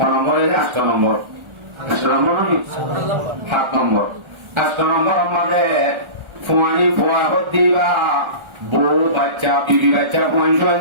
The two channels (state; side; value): late; left; 1.4 ms